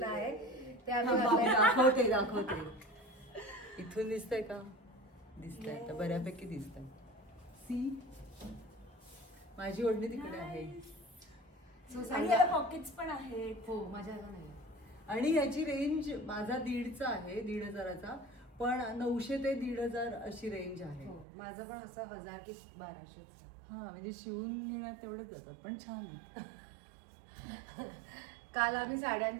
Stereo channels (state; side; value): drops out; left; at 21.2 s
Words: आहे ते आम्ही घातलंय. दाखवते. इथून दिसतंय का? दिसतंय आता बऱ्यापैकी दिसतंय. सी माझी ओढणी तिकडे आहे. आणि याला पॉकेट्स पण आहेत. हो माझ्या नाही. आणि याची रेंज माझा 1,500चा आहे, 1,500चा, पण 900 ते 1,500 अशी रेंज आहे. हो माझं पण असं 1000 की 1200. हा म्हणजे शिवून घेण्यात तेवढेच जातात, पण छान आहे. काल आम्ही